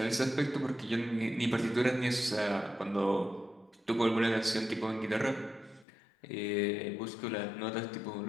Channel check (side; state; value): right; drops out; at 5.9 s